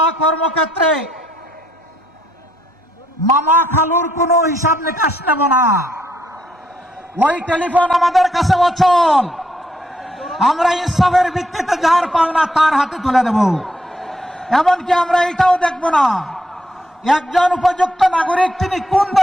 কর্মক্ষেত্রে মামা খালুর কোনো হিসাব নিকাশ নেব না। ওই টেলিফোন আমাদের কাছে অচল। আমরা ইনসাফের ভিত্তিতে যার পাওনা তার হাতে তুলে দেব। এমনকি আমরা এটাও দেখব না একজন উপযুক্ত নাগরিক তিনি কোন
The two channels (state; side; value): normal; both; correlation 0.74